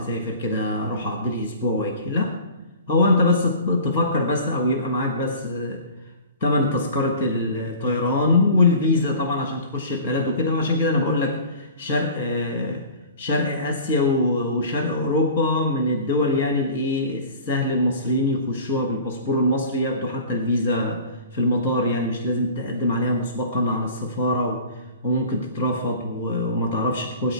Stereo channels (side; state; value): both; inverted; correlation -0.42